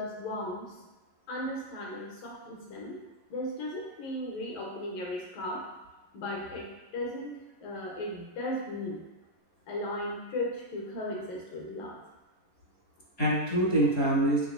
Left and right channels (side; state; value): right; late; 11 ms